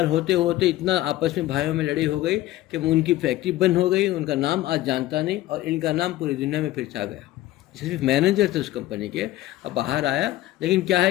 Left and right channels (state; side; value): quieter; right; 15.4 dB